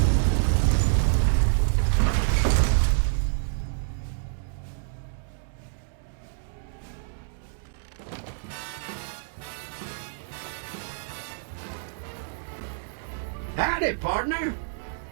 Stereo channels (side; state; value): left; silent; digital silence